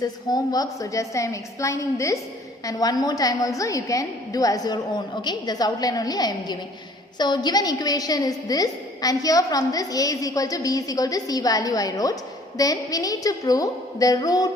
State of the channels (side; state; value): both; normal; correlation 0.55